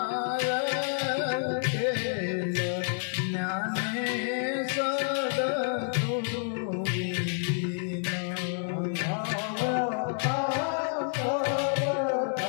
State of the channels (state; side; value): silent; right; digital silence